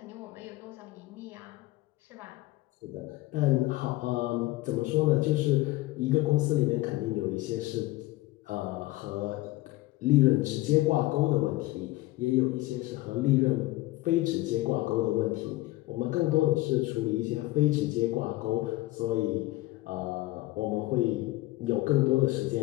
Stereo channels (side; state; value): right; quieter; 18.6 dB